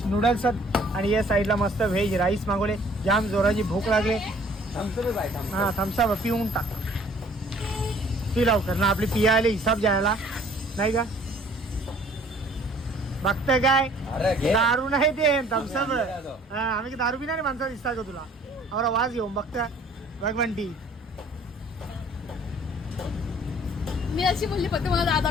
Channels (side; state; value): both; normal; correlation 0.56